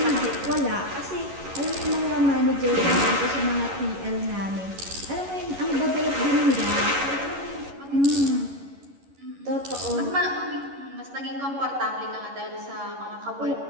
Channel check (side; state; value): left; late; 11 ms